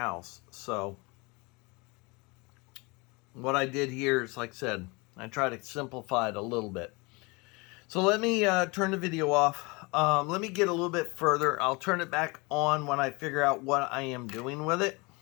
So what I did here is, like I said, I tried to simplify it a little bit. So let me turn the video off. Let me get a little bit further. I'll turn it back on when I figure out what I am doing with it.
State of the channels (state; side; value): quieter; right; 26.7 dB